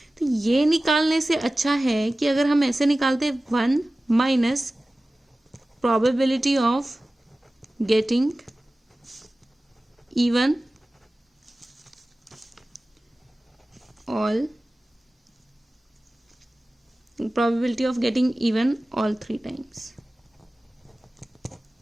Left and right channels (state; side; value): normal; both; correlation 0.97